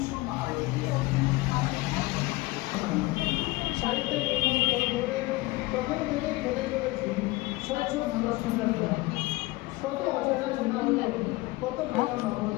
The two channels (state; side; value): quieter; right; 20.7 dB